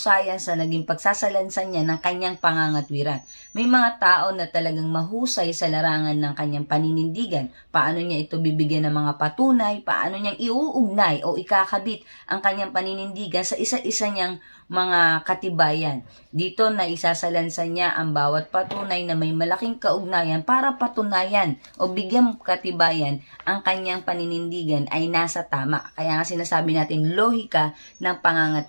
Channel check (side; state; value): both; inverted; correlation -1.00